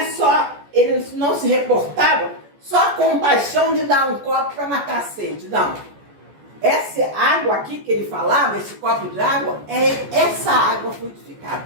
só, ele não se reportava só a compaixão de dar um copo para matar a sede, não. Essa água aqui que ele falava, esse copo de água, é essa água fluidificada.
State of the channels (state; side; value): late; left; 14 ms